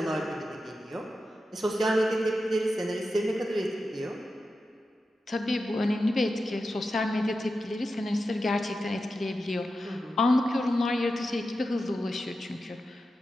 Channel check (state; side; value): normal; both; correlation 0.91